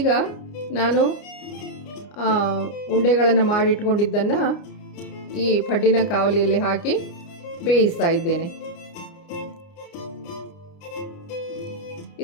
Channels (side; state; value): right; late; 29 ms